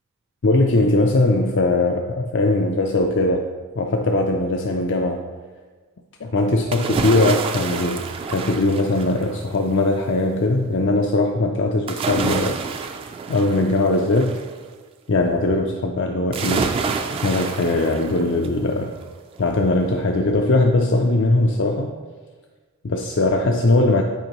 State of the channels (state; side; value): normal; both; correlation 0.30